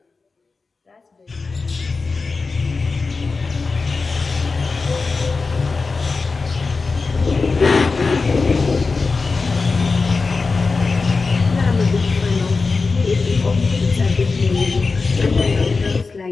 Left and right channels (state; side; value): quieter; right; 4.2 dB